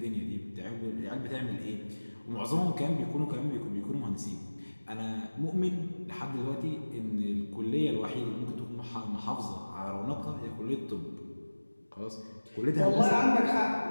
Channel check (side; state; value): both; inverted; correlation -1.00